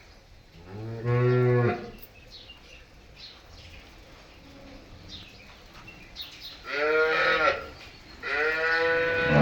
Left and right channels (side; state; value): both; identical; correlation 1.00